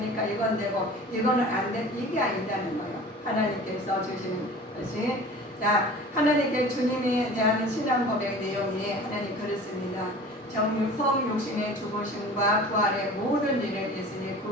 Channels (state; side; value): normal; both; correlation 0.41